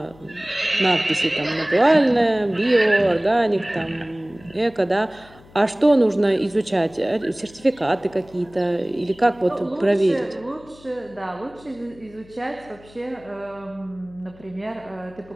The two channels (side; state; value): left; noise; hum, 24 dB below the sound